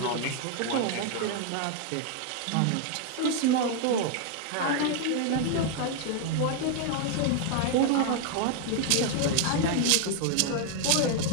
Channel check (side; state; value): both; different; correlation 0.00